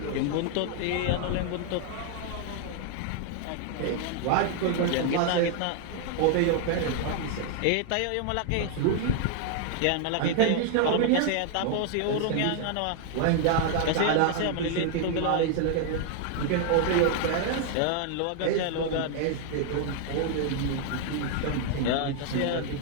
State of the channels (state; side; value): different; both; correlation 0.00